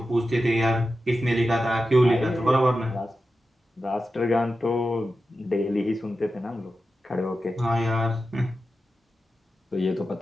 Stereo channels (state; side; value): normal; both; correlation 0.92